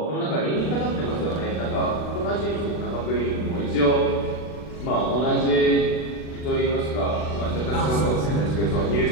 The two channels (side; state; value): right; late; 40 ms